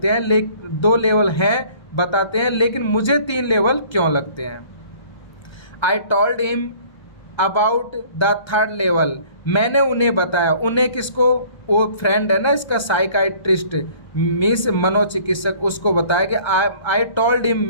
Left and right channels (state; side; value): late; right; 1.3 ms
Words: हैं, 2 लेवल हैं बताते हैं, लेकिन मुझे 3 लेवल क्यों लगते हैं। I told him about the 3rd level. मैंने उन्हें बताया, उन्हें किसको, वो फ्रेंड है ना इसका साइकाइट्रिस्ट मीन्स मनोचिकित्सक, उसको बताया कि आई टोल्ड हिम,